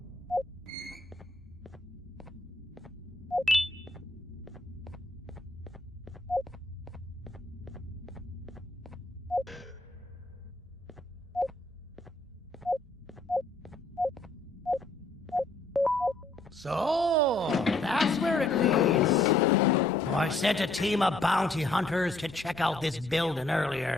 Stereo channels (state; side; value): quieter; right; 3.0 dB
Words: So, that's where it leads. I sent a team of bounty hunters to check out this building